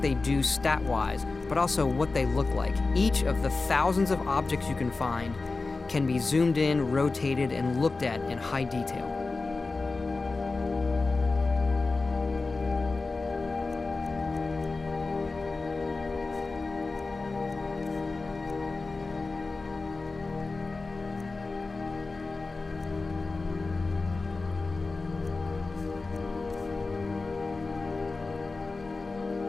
they do stat-wise, but also what they look like. Each of the thousands of objects you can find can be zoomed in, rotated, and looked at in high detail.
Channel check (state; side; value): quieter; right; 3.7 dB